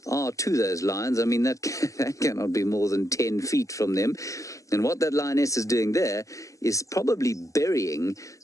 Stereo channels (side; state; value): right; late; 0.16 ms